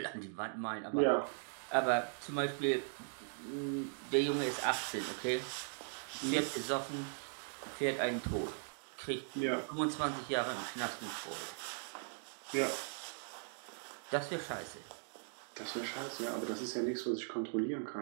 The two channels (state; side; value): silent; left; digital silence